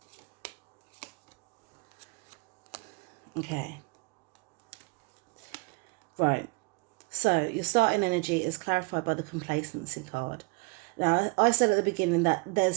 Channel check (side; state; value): left; quieter; 29.2 dB